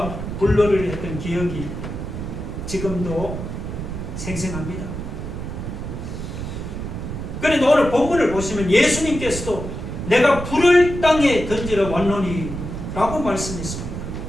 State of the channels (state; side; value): noise; right; rumble, 6 dB below the sound